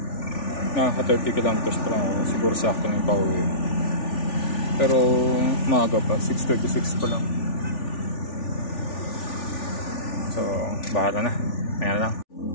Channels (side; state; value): right; late; 3.4 ms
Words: Nakaka 30 kilometers pa lang ako. Siguro sakto na yung pauwi. Pero maaga pa, 6:36 pa lang. So bahala na, maya lang.